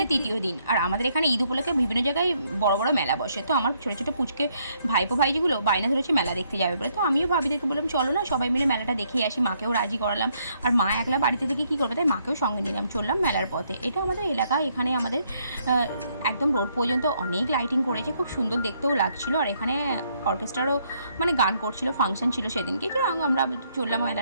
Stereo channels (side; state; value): both; inverted; correlation -0.72